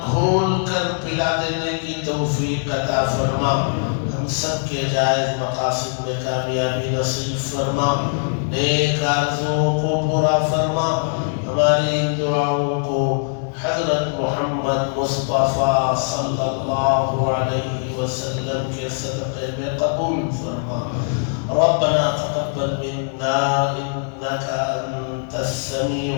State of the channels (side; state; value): right; silent; 65 dB below the other